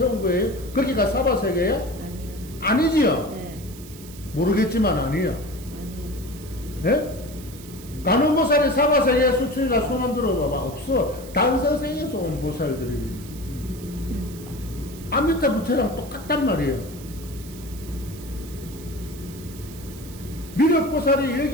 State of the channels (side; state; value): right; noise; hiss, 18 dB below the sound